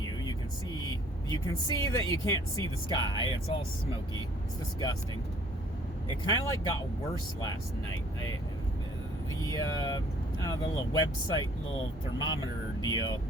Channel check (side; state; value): both; normal; correlation 0.57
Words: You can see that you can't see the sky. It's all smoky. It's disgusting. It kind of like got worse last night. The little website, little thermometer deal